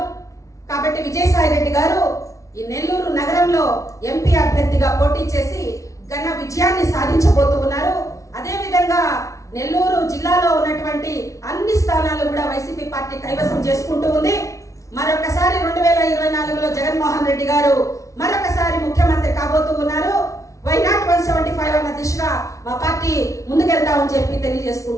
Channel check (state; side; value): late; right; 0.15 ms